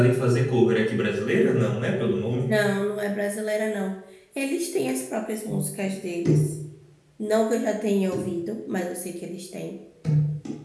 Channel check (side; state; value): both; identical; correlation 1.00